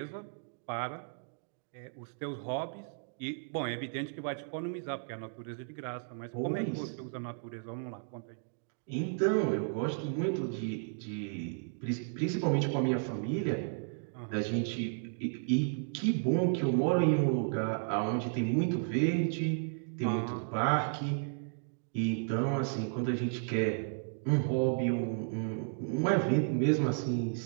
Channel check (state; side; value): silent; left; digital silence